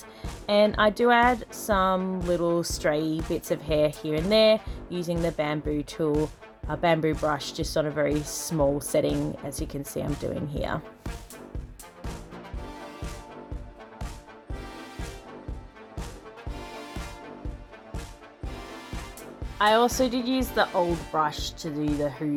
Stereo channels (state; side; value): identical; both; correlation 1.00